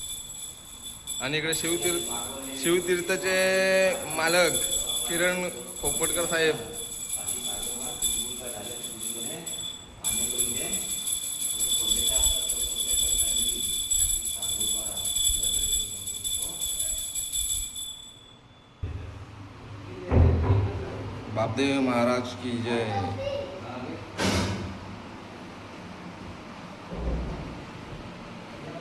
आणि इकडे शिवतीर्थचे मालक किरण खोपटकर साहेब. बापदेव महाराज की जय.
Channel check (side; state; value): both; identical; correlation 1.00